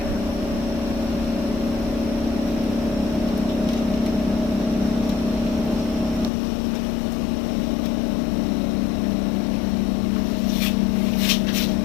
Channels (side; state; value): right; drops out; at 6.3 s